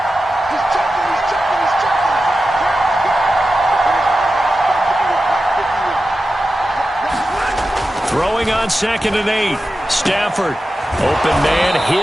Throwing on 2nd and 8. Stafford. Open man,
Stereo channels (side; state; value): both; normal; correlation 0.92